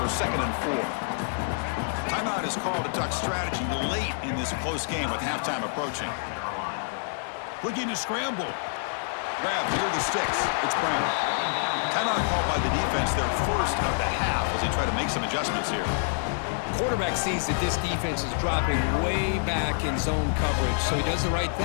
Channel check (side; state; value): right; silent; 60 dB below the other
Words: 2nd and 4. Timeout is called to duck strategy late in this close game with halftime approaching. Looking to scramble. Grab near the sticks. It's Brown. Timeout called by the defense, their first of the half, as they try to make some adjustments here. Quarterback sees that this defense is dropping way back in zone coverage, so he does the right